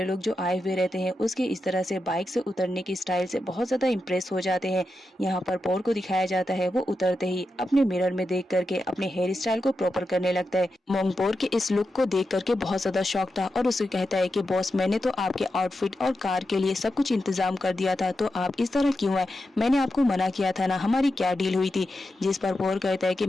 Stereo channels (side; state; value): both; normal; correlation 0.89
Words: लोग जो आए हुए रहते हैं उसके इस तरह से बाइक से उतरने की स्टाइल से बहुत ज्यादा इम्प्रेस हो जाते हैं। यहाँ पर पोर को दिखाया जाता है, वो उतरते ही अपने मिरर में देख करके अपने हेयर स्टाइल को प्रॉपर करने लगता है। मोंग पोर के इस लुक को देख करके बहुत ज्यादा शॉक था और उसे कहता है कि बॉस, मैंने तो आपके आउटफिट और कार के लिए सब कुछ इंतजाम कर दिया था, तो आप इस तरह क्यों है? मैंने आपको मना किया था ना, हमारी क्या डील हुई थी? जिस पर पोर कहता है कि